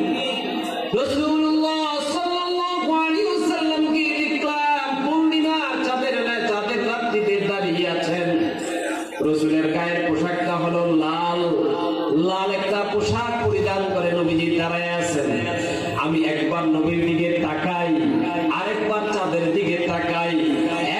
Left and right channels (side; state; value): both; identical; correlation 1.00